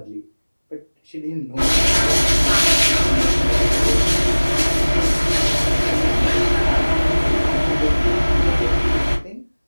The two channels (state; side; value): inverted; both; correlation -1.00